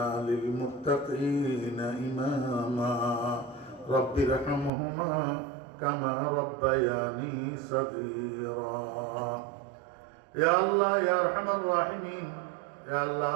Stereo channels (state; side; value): drops out; left; at 4.7 s